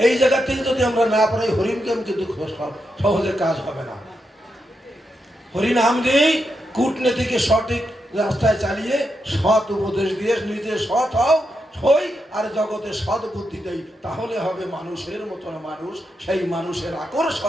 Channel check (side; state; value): both; normal; correlation 0.85